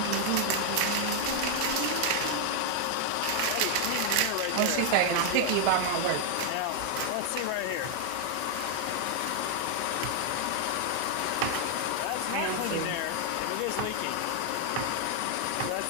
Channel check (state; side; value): different; both; correlation 0.00